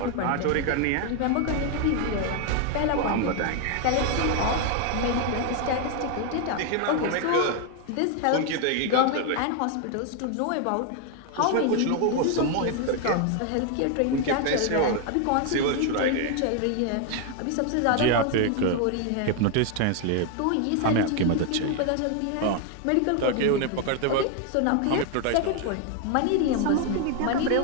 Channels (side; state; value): both; different; correlation 0.01